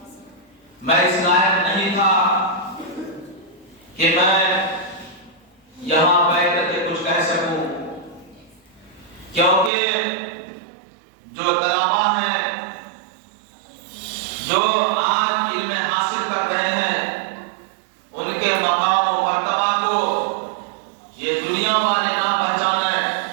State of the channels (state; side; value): drops out; left; at 9.7 s